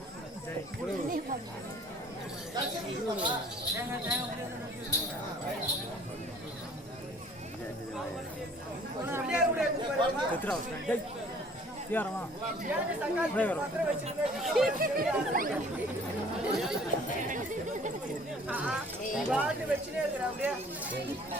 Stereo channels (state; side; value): normal; both; correlation 0.53